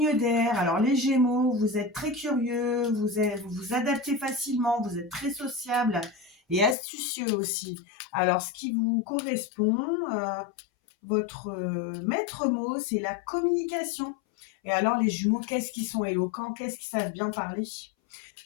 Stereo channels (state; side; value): drops out; right; at 6.8 s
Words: d'air. Alors, les Gémeaux, vous êtes très curieux, vous vous adaptez facilement, vous êtes très sociable et astucieux aussi. Alors, ce qui vous correspond, votre maître mot, c'est la communication. Et alors, les jumeaux, qu'est-ce qu'ils sont éloquents, qu'est-ce qu'ils savent bien parler?